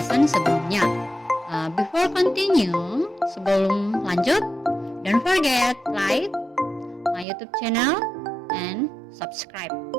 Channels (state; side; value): drops out; left; at 7.2 s